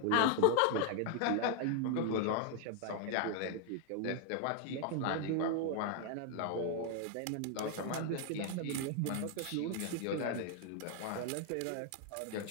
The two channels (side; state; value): both; different; correlation 0.00